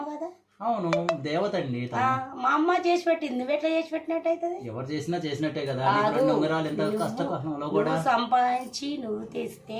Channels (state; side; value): identical; both; correlation 1.00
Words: కదా. అవును, దేవత అండి. మా అమ్మ చేసి పెట్టింది, నువ్వు ఎట్లా చేసి పెట్టినట్టు అవుతుంది? ఎవరు చేసినా చేసినట్టే కదా. ఉంగరాలు ఎంత కష్టంలో కూడా సంపాదించి నువ్వు